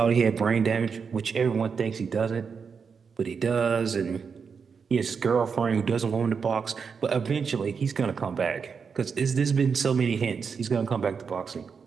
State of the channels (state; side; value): quieter; left; 5.9 dB